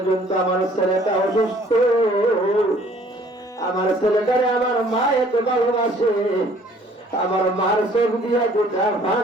আমার ছেলেটা অসুস্থ আমার ছেলেটারে আমার মা এত ভালোবাসে আমার মার চোখ দিয়া গোটা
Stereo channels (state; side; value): normal; both; correlation 0.57